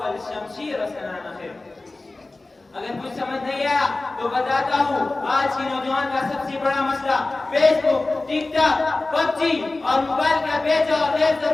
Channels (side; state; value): right; quieter; 3.1 dB